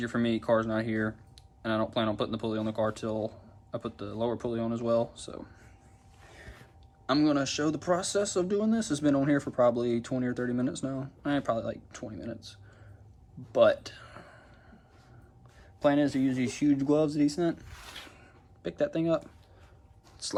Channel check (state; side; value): identical; both; correlation 1.00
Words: for me. Car's not here, and I don't plan on putting the pulley on the car till I put the lower pulley on as well. So I'm going to show the process of doing this. It's been on here for probably 20 or 30 minutes now. Probably like 20 minutes. But plan is to use these huge gloves that he sent. Pick that thing up,